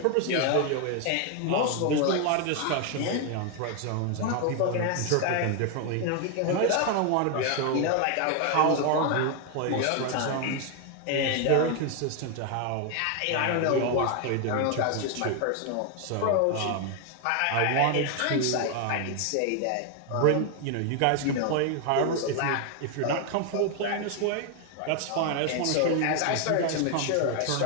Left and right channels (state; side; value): different; both; correlation 0.01